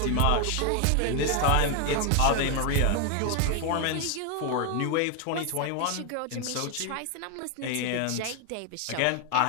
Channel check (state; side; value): different; both; correlation 0.01